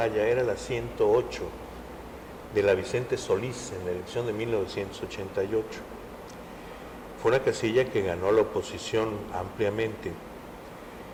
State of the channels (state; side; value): identical; both; correlation 1.00